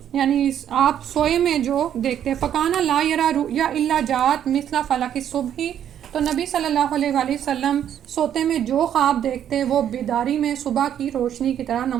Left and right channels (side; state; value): left; quieter; 9.9 dB